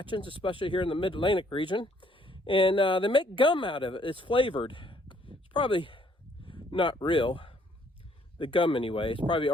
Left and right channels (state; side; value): normal; both; correlation 0.65